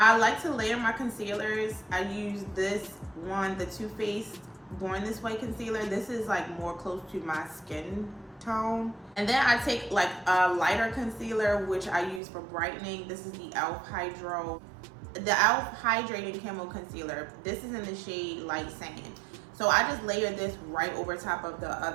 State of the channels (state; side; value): drops out; left; at 12.2 s